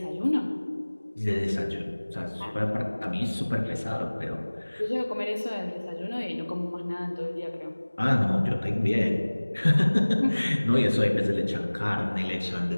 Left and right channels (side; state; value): both; inverted; correlation -1.00